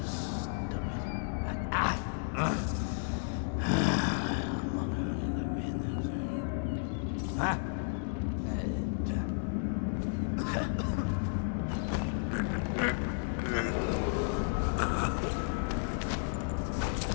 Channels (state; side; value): silent; right; digital silence